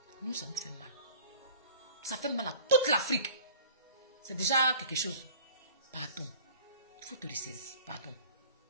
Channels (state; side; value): inverted; both; correlation -0.46